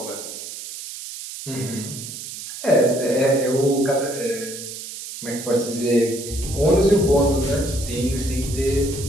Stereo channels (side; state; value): right; noise; hiss, 10 dB below the sound